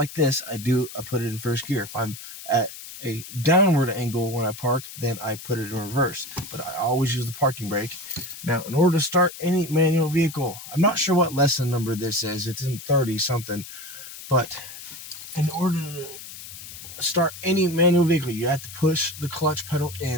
this, I put it in first gear. If I'm at a downward angle when I park, then I put it in reverse, but I always use the parking brake. Now, in order to start any manual vehicle, I'm not sure what lesson number this is. It's in 30 something, but in order to start any manual vehicle, you have to push the clutch pedal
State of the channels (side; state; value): left; noise; hiss, 13 dB below the sound